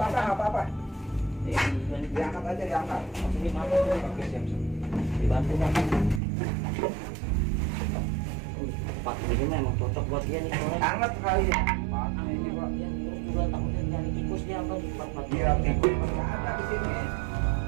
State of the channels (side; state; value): left; drops out; at 6.2 s